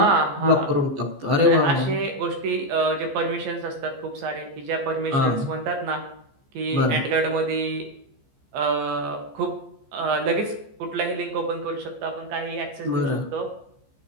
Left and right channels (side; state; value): left; late; 14 ms